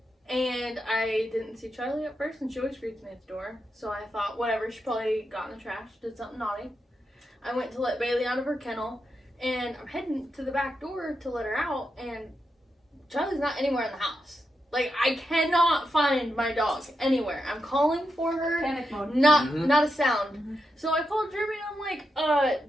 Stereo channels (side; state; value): both; normal; correlation 0.87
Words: and I didn't see Charlie at first, and she always greets me at the door. So I thought, whatever, she probably got in the trash, did something naughty. I went to let Bailey out of her kennel, and I'm heading to the back door to let her out, and Charlie's not anywhere in the house. Like, I cannot find my dog anywhere. I'm calling for her. Panic mode. Not a sound. So I called Jeremy and I'm